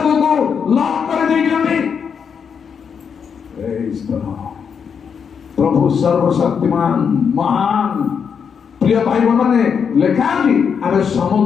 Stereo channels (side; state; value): right; quieter; 6.8 dB